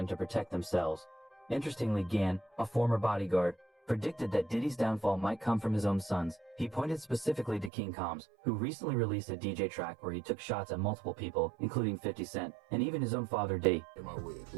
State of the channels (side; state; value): left; drops out; at 7.7 s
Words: to protect themselves. Interestingly, Gann, a former bodyguard, predicted that Diddy's downfall might come from his own sons. He pointed specifically to King Combs, who recently released a DJ track where he took shots at multiple people, including 50 Cent, and even his own father, Diddy.